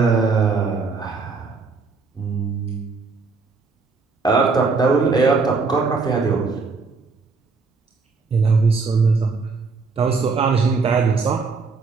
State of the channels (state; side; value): quieter; left; 4.4 dB